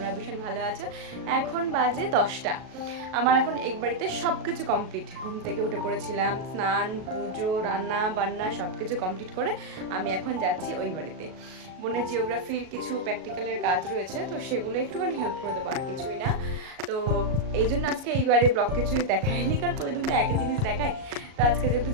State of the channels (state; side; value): late; left; 38 ms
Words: ভীষণ ভালো আছো। এখন বাজে 10টা। আমার এখন এক বাড়িতে সব কিছু কমপ্লিট। ঘুম থেকে উঠে পড়েছিলাম, স্নান, পুজো, রান্না বান্না সব কিছু কমপ্লিট করে আমি এখন যাচ্ছি ওই বাড়িতে। বোনের জিওগ্রাফির কিছু প্র্যাকটিক্যালের কাজ রয়েছে, তো সেগুলো একটুখানি হেল্প করে দেবো, আর কিছুই না। তো এই জন্য আজকে এইবারে ব্লগ কিছু দেখায়নি, কারণ প্রতিদিন তো একই জিনিস দেখায়। তো আজকে যেহেতু